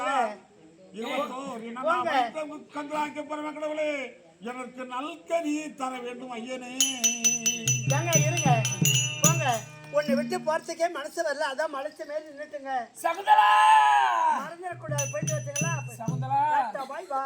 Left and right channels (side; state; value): both; identical; correlation 1.00